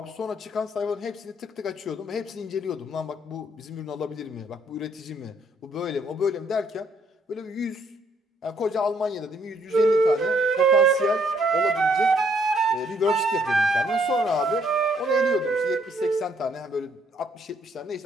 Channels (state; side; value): normal; both; correlation 0.68